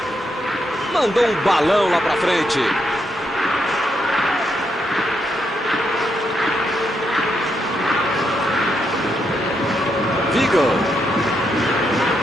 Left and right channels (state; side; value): normal; both; correlation 0.80